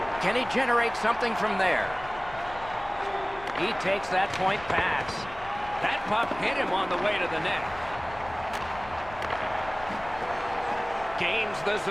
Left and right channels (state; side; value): noise; left; rumble, 18 dB below the sound